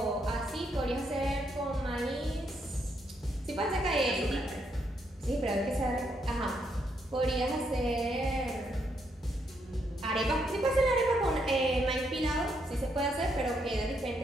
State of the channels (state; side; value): normal; both; correlation 0.76